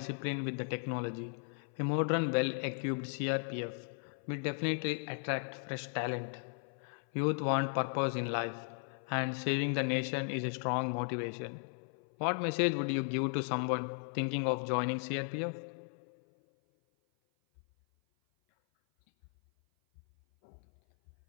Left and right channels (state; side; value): silent; right; 54 dB below the other